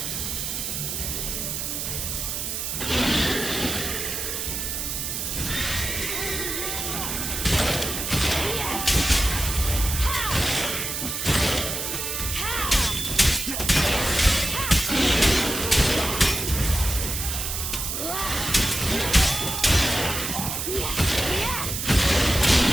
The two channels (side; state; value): right; noise; hiss, 3 dB below the sound